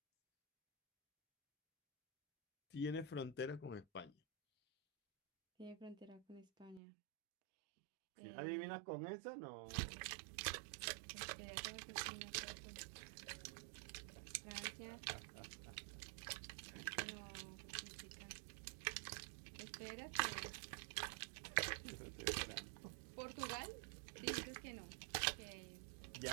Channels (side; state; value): left; drops out; at 6.8 s